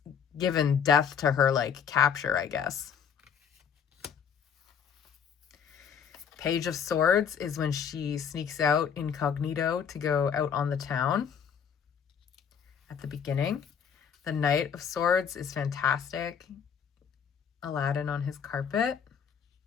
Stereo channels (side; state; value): right; quieter; 7.3 dB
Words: given death to her like capture, I guess. Page of Swords is when she sneaks out incognito to go out on the town at the beginning. The Knight of Swords is fantastic. Aladdin on his carpet.